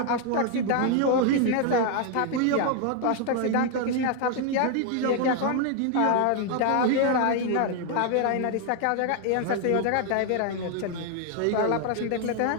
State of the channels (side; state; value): both; different; correlation 0.00